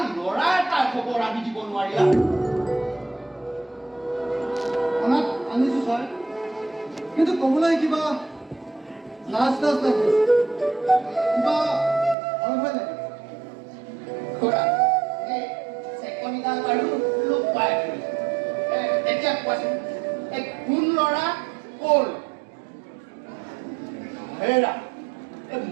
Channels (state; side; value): drops out; left; at 12.2 s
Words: ল'ৰা এটাৰ খবৰ আনি দিব নোৱাৰিলা আনিছো ছাৰ কিন্তু ক'বলৈ কিবা লাজ লাগে কিবা ভয় ভয় লাগে চেকনিডাল বাৰু লোক পাই এতিয়া কোৱাচোন এই কোন ল'ৰা ক'ৰ হেৰা